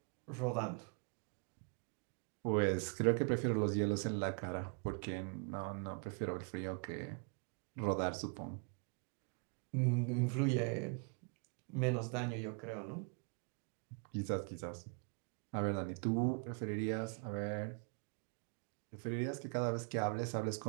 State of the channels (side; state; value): left; quieter; 39.8 dB